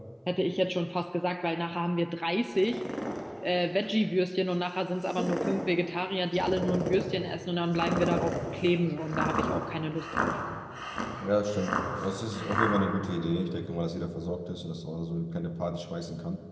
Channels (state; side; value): identical; both; correlation 1.00